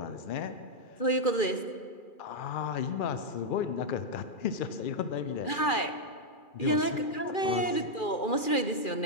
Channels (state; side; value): late; right; 2.4 ms